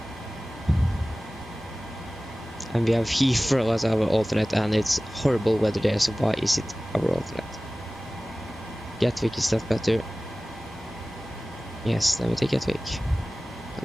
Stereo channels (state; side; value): normal; both; correlation 0.97